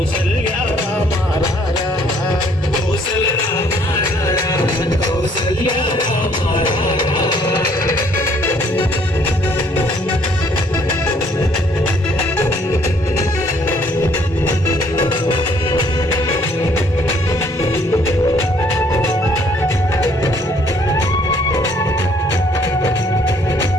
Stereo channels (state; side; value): normal; both; correlation 0.63